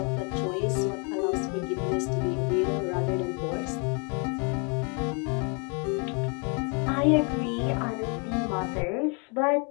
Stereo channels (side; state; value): right; quieter; 36.1 dB